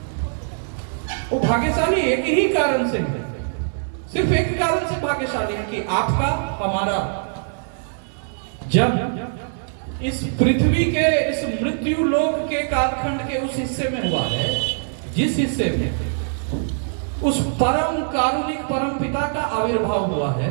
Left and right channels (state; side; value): silent; left; digital silence